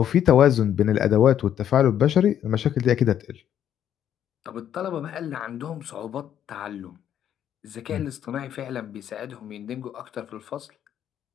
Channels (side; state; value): right; quieter; 10.1 dB